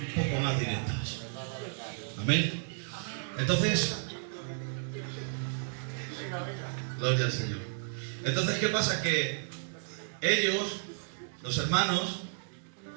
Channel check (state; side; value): silent; left; digital silence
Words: poco más directas. Amén. Entonces, gloria al Señor. Entonces, ¿qué pasa? Que ellos, los hermanos,